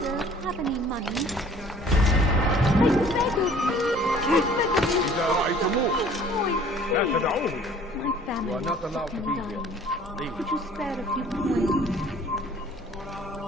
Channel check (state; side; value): normal; both; correlation 0.52